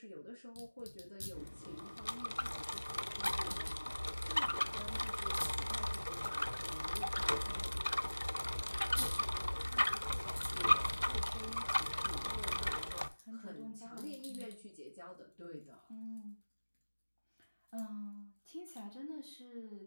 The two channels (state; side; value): inverted; both; correlation -1.00